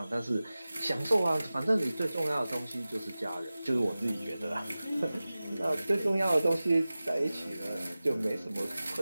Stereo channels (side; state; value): both; inverted; correlation -0.97